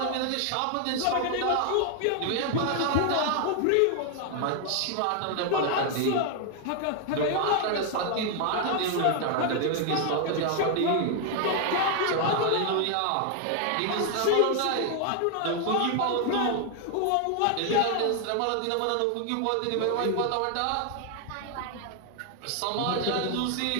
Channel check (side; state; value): both; different; correlation 0.00